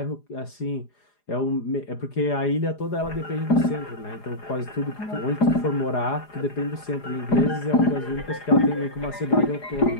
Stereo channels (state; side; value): late; right; 4.9 ms